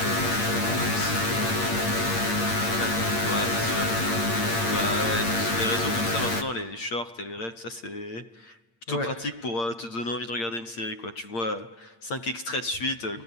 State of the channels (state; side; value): late; right; 8.7 ms